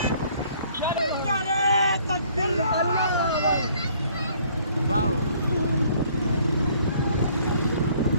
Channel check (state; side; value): inverted; both; correlation -0.60